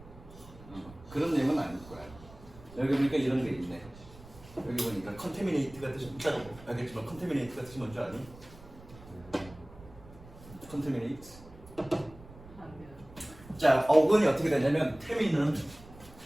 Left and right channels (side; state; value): right; noise; rumble, 19 dB below the sound